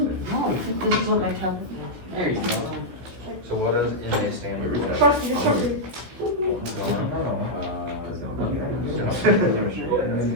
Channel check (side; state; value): left; late; 16 ms